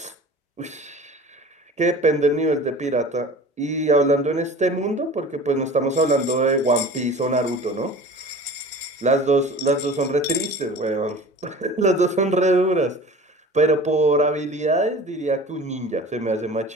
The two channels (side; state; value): both; normal; correlation 0.40